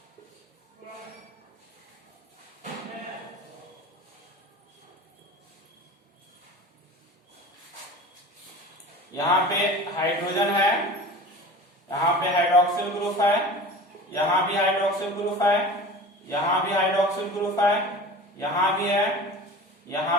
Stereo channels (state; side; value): normal; both; correlation 0.37